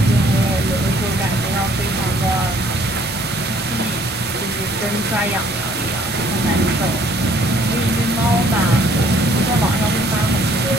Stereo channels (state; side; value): normal; both; correlation 0.60